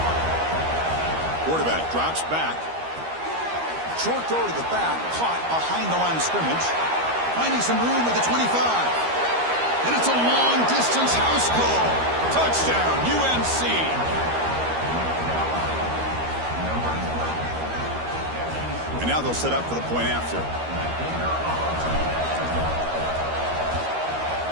Quarterback drops back. Short throw to the back, caught behind the line of scrimmage. Finding some room at the 25. And it's a long-distance house call. Touchdown, UNC. And now they'll set up for the point after.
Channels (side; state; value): left; late; 13 ms